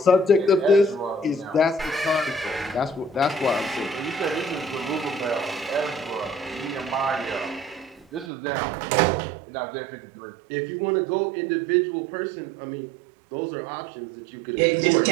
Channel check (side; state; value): left; drops out; at 8.3 s